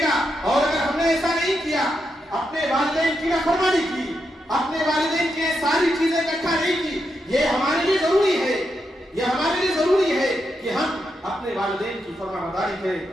گا, اور اگر ہم نے ایسا نہیں کیا, اپنے والدین کی نافرمانی کی, اپنے والدین کے ساری چیزیں اکٹھا نہیں کی, یہ ہمارے لیے ضروری ہے, یہ ہمارے لیے ضروری ہے کہ ہم اپنے والدین کی فرمانبرداری کریں.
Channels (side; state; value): both; normal; correlation 0.84